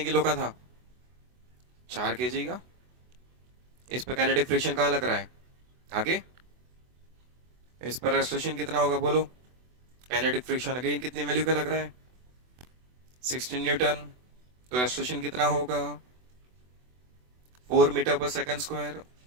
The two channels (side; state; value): left; late; 24 ms